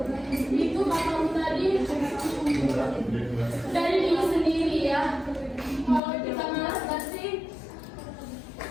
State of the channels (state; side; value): drops out; right; at 6.0 s